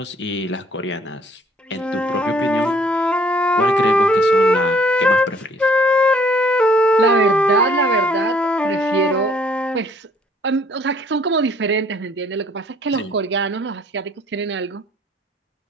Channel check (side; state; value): both; normal; correlation 0.61